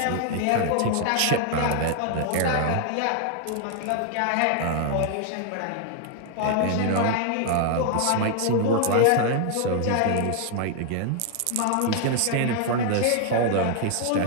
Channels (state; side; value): different; both; correlation 0.00